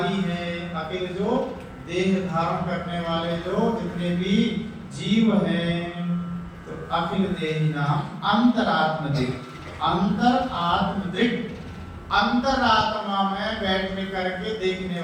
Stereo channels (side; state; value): both; identical; correlation 1.00